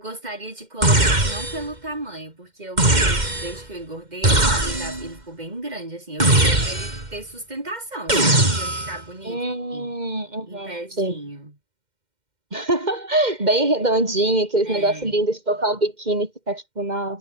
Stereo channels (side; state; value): left; late; 2.1 ms